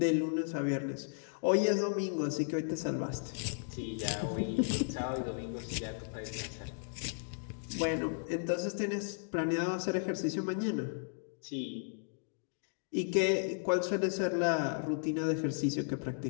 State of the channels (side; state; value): right; silent; digital silence